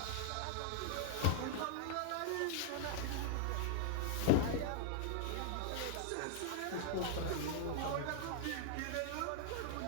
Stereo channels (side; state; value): both; different; correlation 0.00